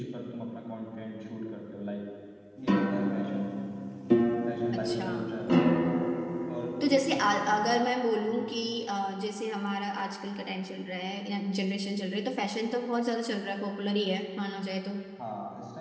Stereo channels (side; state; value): both; identical; correlation 1.00